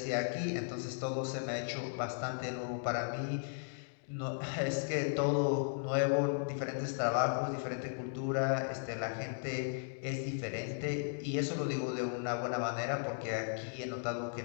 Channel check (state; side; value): silent; right; digital silence